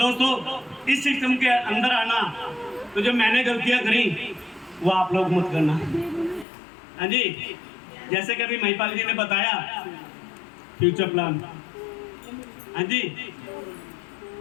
इस सिस्टम के अंदर आना, तो जो मैंने गलतियाँ करी वो आप लोग मत करना। हाँ जी, जैसे कि अभी महिपाल जी ने बताया फ्यूचर प्लान। हाँ जी,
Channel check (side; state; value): right; drops out; at 6.5 s